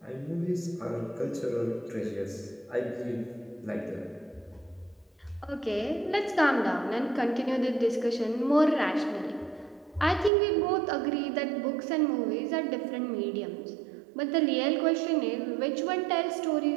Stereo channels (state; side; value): drops out; left; at 10.3 s